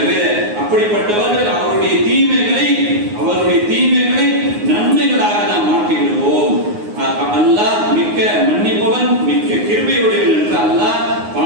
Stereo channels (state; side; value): late; left; 9.6 ms